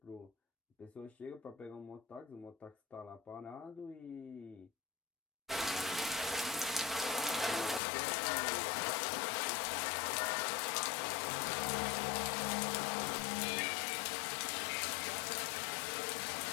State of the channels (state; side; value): drops out; right; at 7.8 s